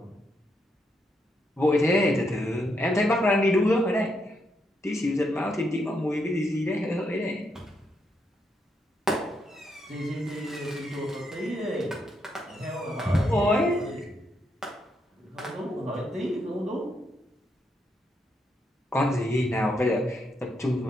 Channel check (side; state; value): both; normal; correlation 0.79